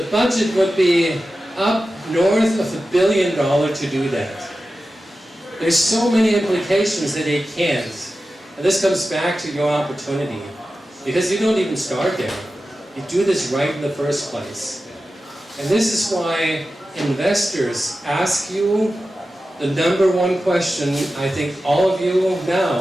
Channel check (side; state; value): both; normal; correlation 0.93